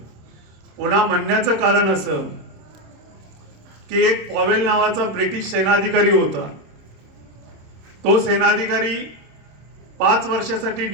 पुन्हा म्हणण्याचं कारण असं की एक पॉवेल नावाचा ब्रिटिश सेनाधिकारी होता, तो सेनाधिकारी 5 वर्षासाठी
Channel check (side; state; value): left; late; 26 ms